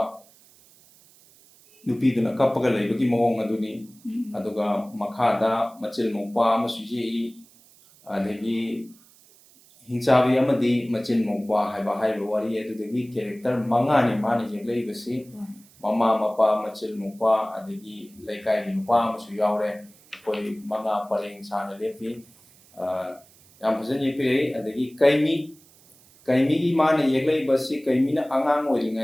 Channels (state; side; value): noise; right; hiss, 27 dB below the sound